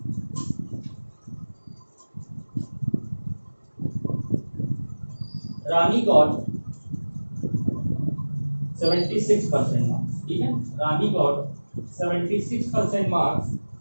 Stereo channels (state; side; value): inverted; both; correlation -1.00